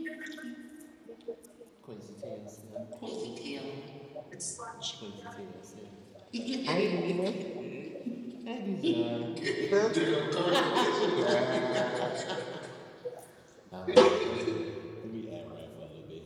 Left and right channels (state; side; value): identical; both; correlation 1.00